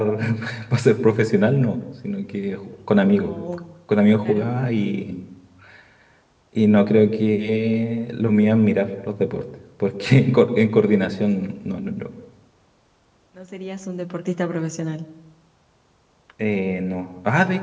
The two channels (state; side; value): identical; both; correlation 1.00